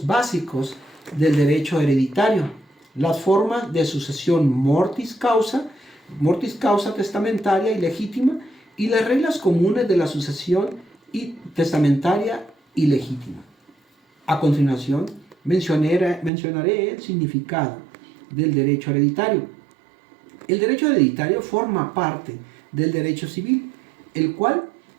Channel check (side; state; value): left; drops out; at 16.3 s